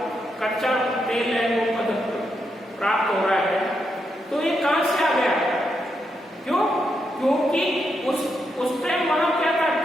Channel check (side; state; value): both; normal; correlation 0.82